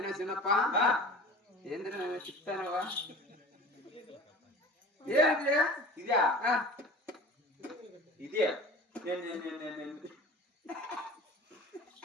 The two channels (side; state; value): both; normal; correlation 0.39